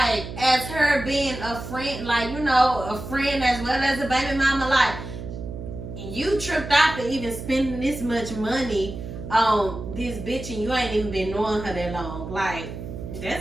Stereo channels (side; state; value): right; noise; hum, 9 dB below the sound